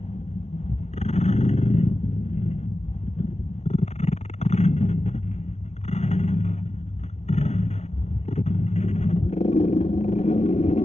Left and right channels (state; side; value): late; right; 0.32 ms